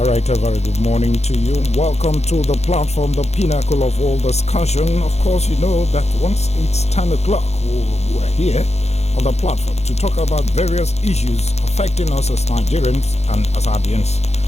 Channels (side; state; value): right; late; 0.31 ms